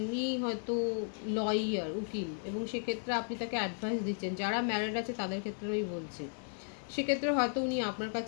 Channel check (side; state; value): right; silent; 55 dB below the other